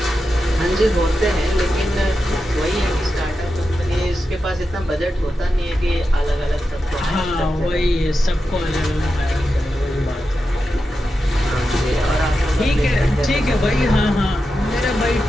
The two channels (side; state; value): both; normal; correlation 0.90